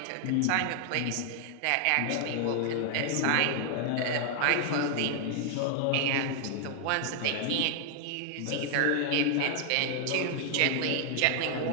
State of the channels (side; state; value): both; different; correlation 0.00